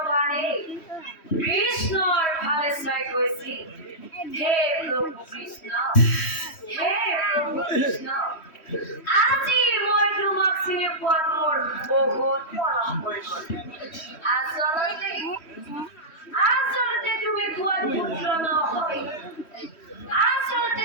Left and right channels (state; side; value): late; right; 3.1 ms